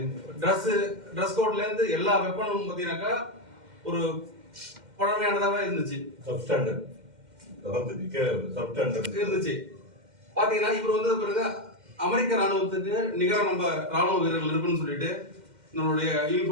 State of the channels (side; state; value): left; late; 2.1 ms